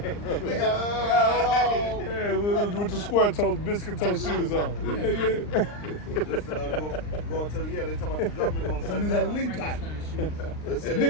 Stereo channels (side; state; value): right; late; 39 ms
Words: Yeah, with the square toe, biscuit toe shoes on. Yeah. Just going to they talking about the government gonna shut I mean, that down. Lincoln.